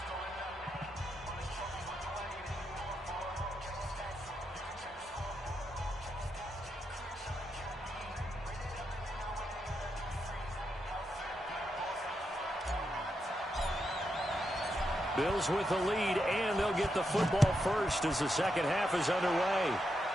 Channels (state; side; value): normal; both; correlation 0.84